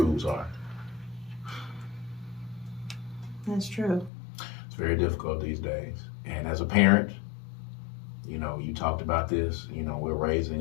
are. That's true. It's very difficult these days. And as a parent, you know, you talked about this. You know, we're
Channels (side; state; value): right; drops out; at 4.1 s